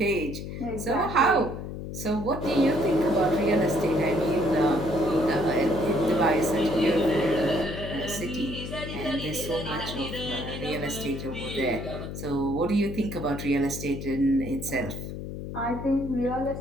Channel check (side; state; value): left; noise; hum, 7 dB below the sound